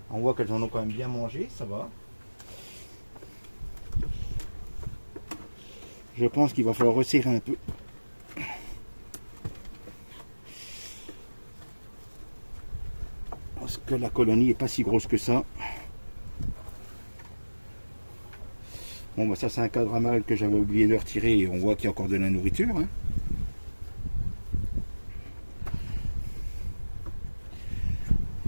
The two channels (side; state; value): both; inverted; correlation -1.00